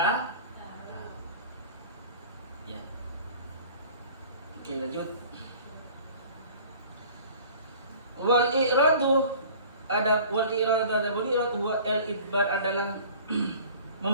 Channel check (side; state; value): both; inverted; correlation -0.46